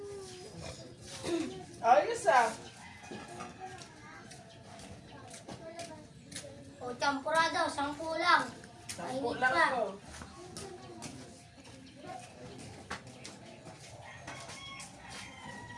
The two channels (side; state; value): both; identical; correlation 1.00